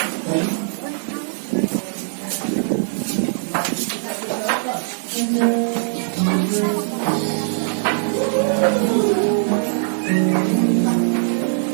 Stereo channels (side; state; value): left; silent; digital silence